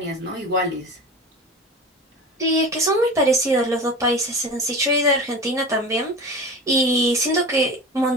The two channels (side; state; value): both; normal; correlation 0.32